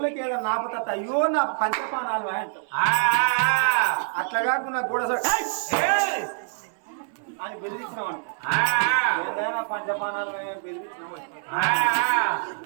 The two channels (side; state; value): left; silent; 61 dB below the other